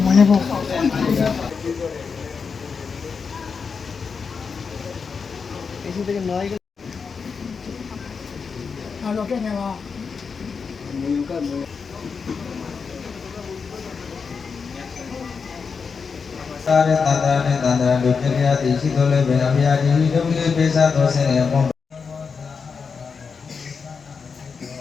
သာရတန္တရာနဲ့တန္တရာတို့ပြည့်ရသည်ရှိတော်လဲဘယ်အမြာဒီတို့လေးပေးစားတော်ဆင်းရဲ့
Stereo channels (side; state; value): right; quieter; 5.5 dB